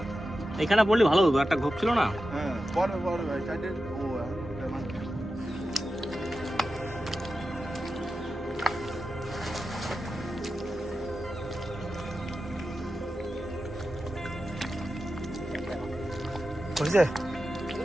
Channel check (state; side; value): normal; both; correlation 0.91